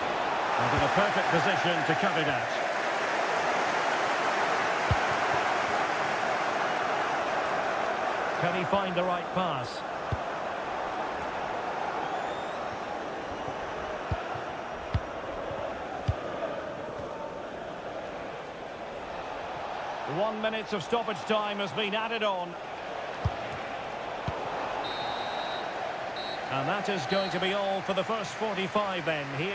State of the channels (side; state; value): both; identical; correlation 1.00